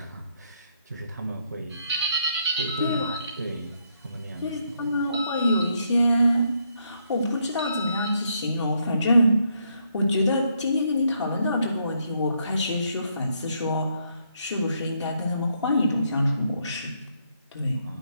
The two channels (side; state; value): both; inverted; correlation -0.75